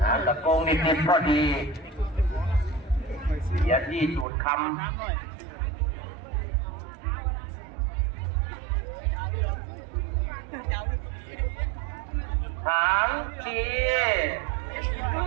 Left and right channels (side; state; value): left; drops out; at 4.2 s